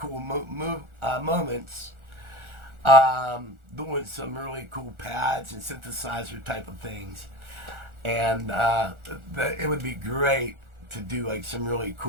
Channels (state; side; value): late; left; 1.4 ms